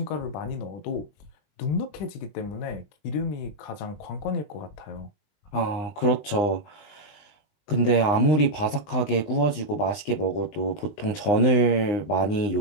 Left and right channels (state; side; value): late; right; 20 ms